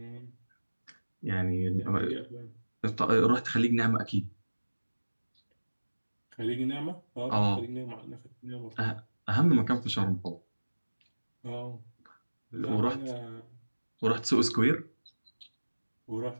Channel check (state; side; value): inverted; both; correlation -1.00